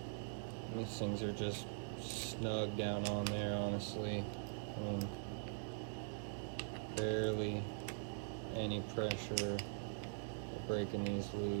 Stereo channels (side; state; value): left; silent; digital silence